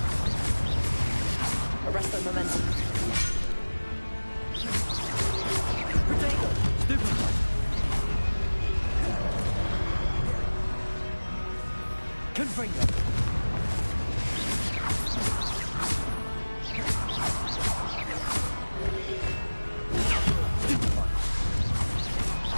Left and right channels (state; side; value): inverted; both; correlation -1.00